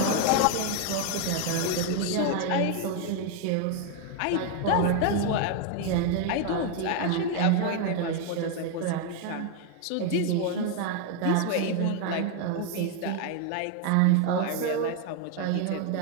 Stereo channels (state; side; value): different; both; correlation 0.01